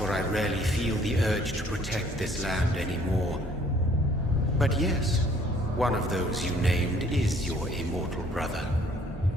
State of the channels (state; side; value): normal; both; correlation 0.59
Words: I rarely feel the urge to protect this land anymore. But yes, one of those you named is your immortal brother.